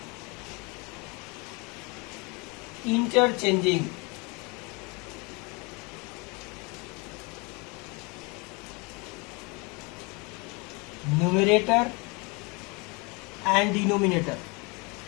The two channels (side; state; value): right; quieter; 29.3 dB